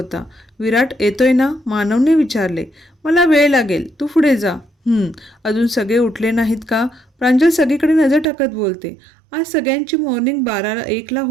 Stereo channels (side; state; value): left; drops out; at 8.2 s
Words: विराट येतोय ना? मानवने विचारले. मला वेळ लागेल, तू पुढे जा. अजून सगळे उठले नाहीत का? प्रांजल सगळीकडे नजर टाकत बोलते. आज सगळ्यांची मॉर्निंग 12ला 1ला